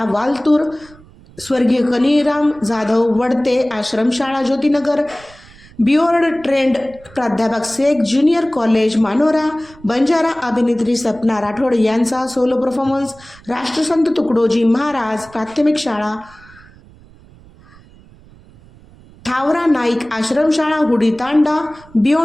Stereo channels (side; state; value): right; noise; rumble, 24 dB below the sound